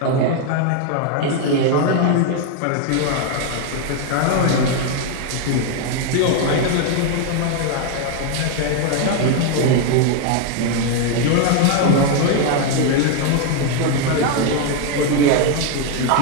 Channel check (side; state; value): both; different; correlation 0.01